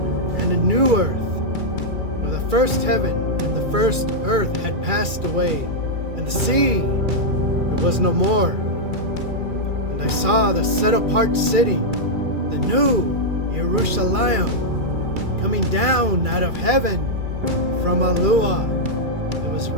and a new earth, for the first heaven and the first earth had passed away, and the sea, it was no more. And I saw the set-apart city, the new Yahusha, coming down out of heaven from YAHUAH. It was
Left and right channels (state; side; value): late; left; 2.4 ms